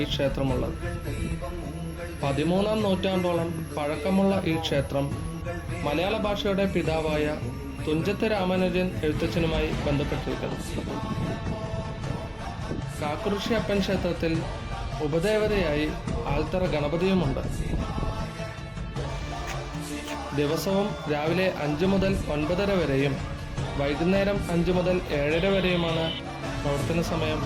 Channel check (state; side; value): identical; both; correlation 1.00